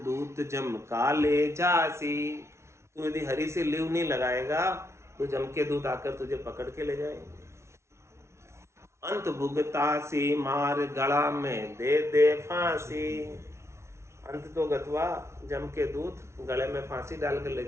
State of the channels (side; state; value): left; late; 0.13 ms